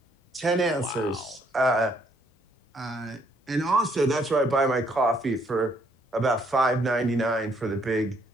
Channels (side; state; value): both; normal; correlation 0.68